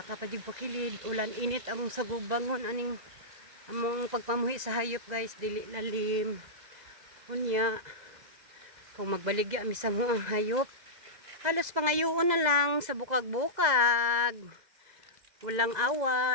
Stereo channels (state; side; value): late; left; 2.0 ms